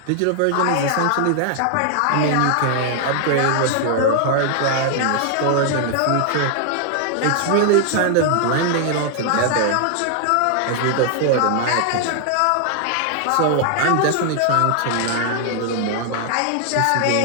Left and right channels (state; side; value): different; both; correlation 0.00